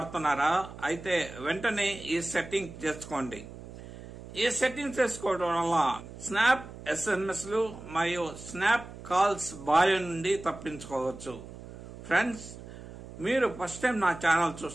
అయితే వెంటనే ఈ సెట్టింగ్ చేసుకోండి. ఈ సెట్టింగ్ చేసుకోవడం వల్ల స్నాప్ ఎస్ఎంఎస్లు మరియు స్నాప్ కాల్స్ బారి నుండి తప్పించుకోవచ్చు. ఫ్రెండ్స్, మీరు ఫస్ట్ టైం నా ఛానల్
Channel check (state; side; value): noise; right; hum, 14 dB below the sound